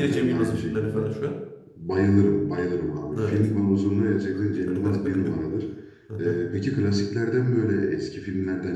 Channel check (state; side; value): identical; both; correlation 1.00